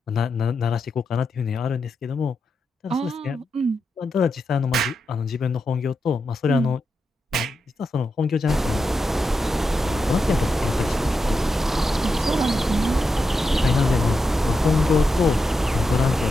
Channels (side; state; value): both; normal; correlation 0.87